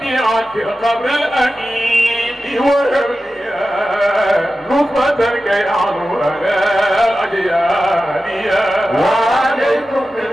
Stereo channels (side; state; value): both; normal; correlation 0.93